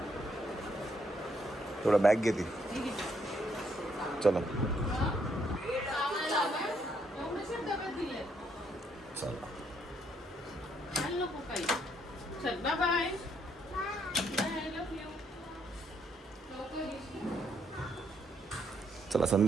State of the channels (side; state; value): both; normal; correlation 0.73